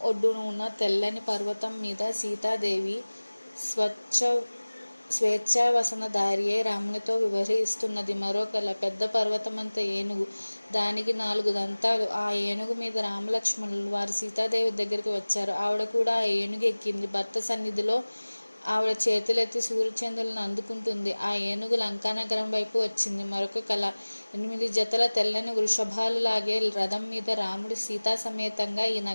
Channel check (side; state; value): both; inverted; correlation -1.00